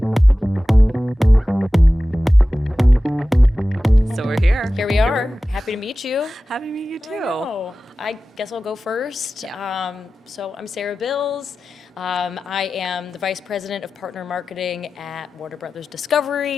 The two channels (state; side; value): normal; both; correlation 0.95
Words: So we're here. Here we are. Happy to meet you. Happy to meet you I too. know. I guess I'll go first. Yeah. So I'm Sarah Bills. I am the Vice President of Partner Marketing at Warner Brothers